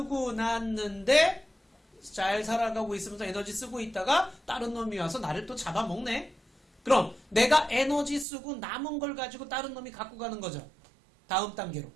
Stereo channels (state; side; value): drops out; left; at 8.2 s